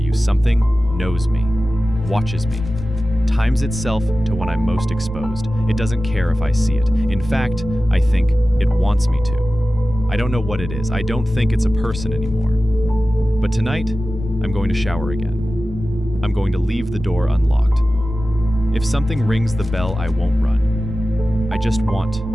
you, something knows me, watches me, times itself to when I'm most exposed. It doesn't care if I see it. In fact, I think it wants me to. I don't know what it is. I don't think it's a person anymore. But tonight, I'm going to shower again. I'm going to leave the door unlocked. If something rings the bell, I won't run. I just want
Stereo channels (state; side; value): noise; right; rumble, 15 dB below the sound